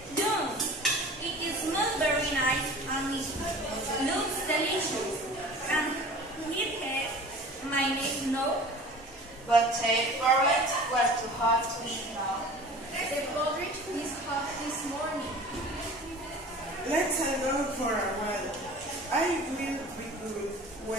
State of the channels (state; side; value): normal; both; correlation 0.42